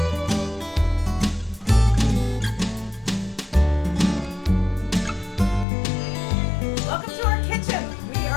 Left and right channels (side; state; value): right; drops out; at 5.7 s